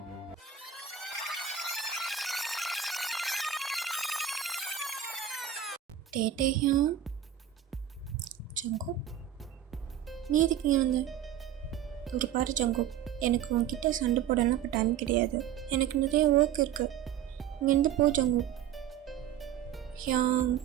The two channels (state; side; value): quieter; left; 9.6 dB